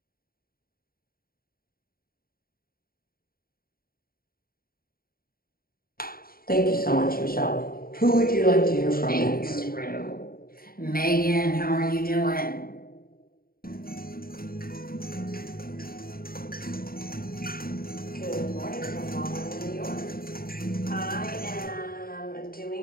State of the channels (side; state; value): right; late; 0.43 ms